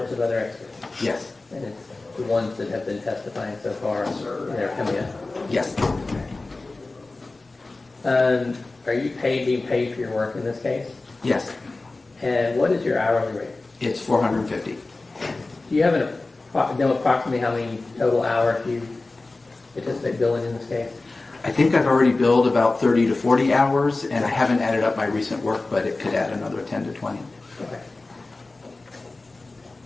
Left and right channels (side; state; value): right; quieter; 3.3 dB